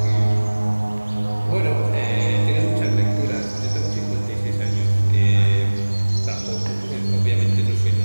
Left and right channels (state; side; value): inverted; both; correlation -1.00